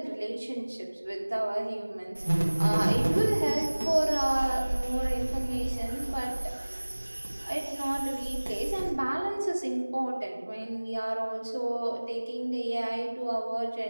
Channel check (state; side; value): inverted; both; correlation -1.00